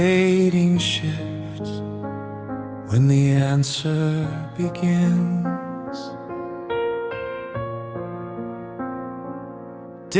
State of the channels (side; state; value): both; identical; correlation 1.00